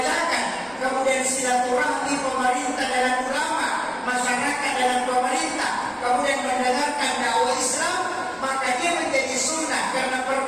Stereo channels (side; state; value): both; identical; correlation 1.00